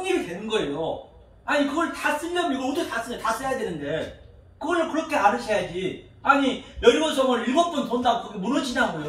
되는 거예요. 아니 그걸 다 쓰려면 이걸 어떻게 다 쓰냐. 다 써야 되는데 그걸 그렇게 알으셔야지. 아니 여리고성을 7번 돈다고 그게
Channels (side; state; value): both; identical; correlation 1.00